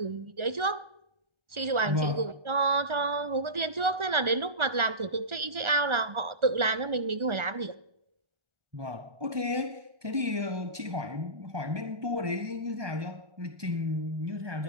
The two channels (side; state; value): left; late; 1.4 ms